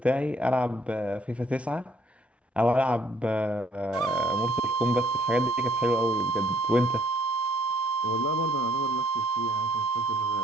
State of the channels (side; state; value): both; normal; correlation 0.64